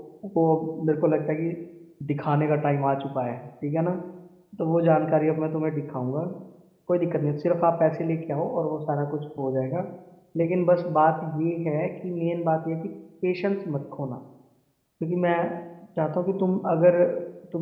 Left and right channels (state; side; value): identical; both; correlation 1.00